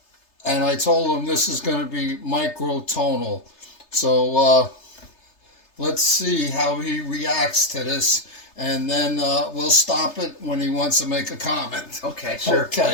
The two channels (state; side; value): late; right; 3.3 ms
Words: and I told him this is going to be microtonal. So let's see how he reacts to this, and then we'll stop it when he wants to make a comment. Okay, sure.